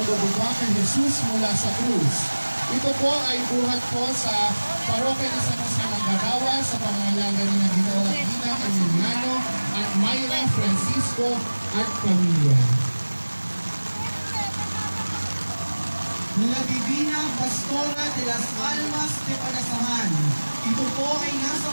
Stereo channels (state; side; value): inverted; both; correlation -1.00